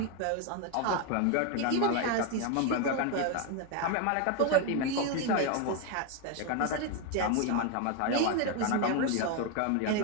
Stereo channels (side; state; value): both; different; correlation 0.01